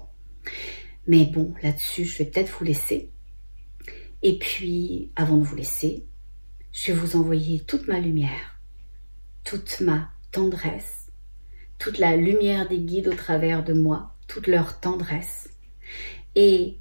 Mais bon, là-dessus, je vais peut-être vous laisser. Et puis, avant de vous laisser, je vais vous envoyer toute ma lumière, toute ma tendresse, toute la lumière des guides au travers de moi, toute leur tendresse et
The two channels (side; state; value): both; inverted; correlation -1.00